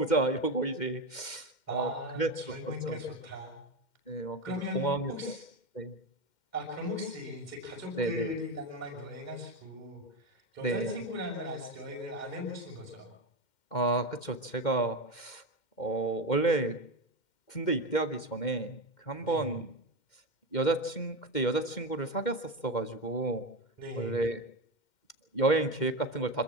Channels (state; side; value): late; right; 2.1 ms